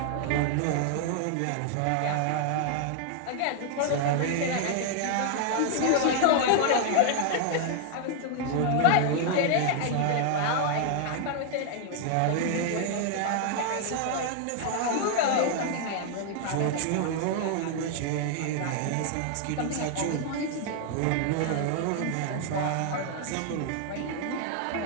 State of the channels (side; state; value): both; different; correlation 0.00